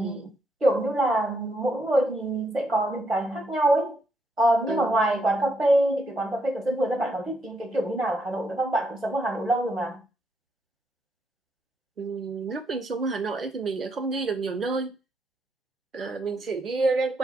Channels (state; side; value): normal; both; correlation 0.77